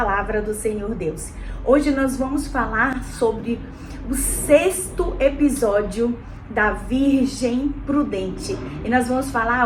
do Senhor Deus. Hoje nós vamos falar sobre o 6º episódio da Virgem Prudente. E nós vamos falar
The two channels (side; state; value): both; identical; correlation 1.00